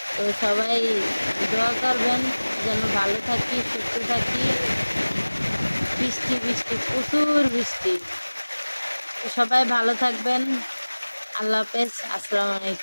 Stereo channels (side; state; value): both; inverted; correlation -1.00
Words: তো সবাই দোয়া করবেন যেন ভালো থাকি, সুস্থ থাকি। বৃষ্টি বৃষ্টি প্রচুর বৃষ্টি। সবাই ভালো থাকবেন। আল্লাহ হাফেজ। আসসালামু